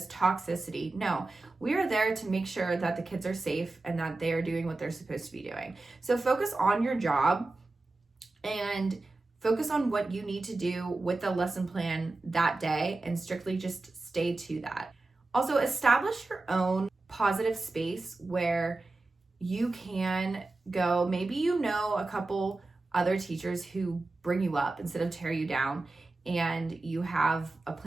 toxicity. No, we are there to make sure that the kids are safe and that they are doing what they're supposed to be doing. So focus on your job and focus on what you need to do with the lesson plan that day and strictly just stay to that. Also, establish your own positive space where you can go. Maybe you know a couple other teachers who bring you up instead of tear you down, and you have a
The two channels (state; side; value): quieter; left; 3.2 dB